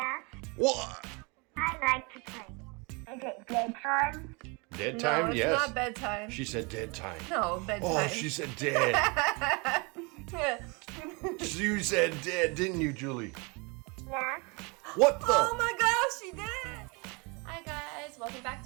What? I like to play. Is it bedtime? Dead time? No, it's Yes. not bedtime. She said dead time. No, bedtime. Oh, she said dead. You said dead, didn't you, Julie? Yeah. What the? Oh my gosh, she did! Hi guys, welcome back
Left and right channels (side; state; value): left; quieter; 29.7 dB